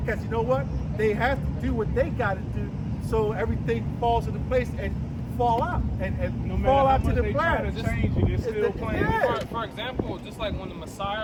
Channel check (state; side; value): identical; both; correlation 1.00